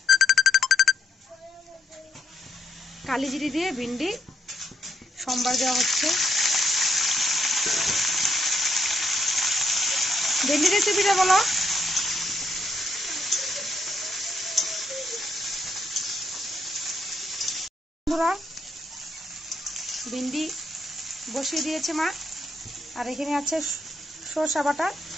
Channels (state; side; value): normal; both; correlation 0.76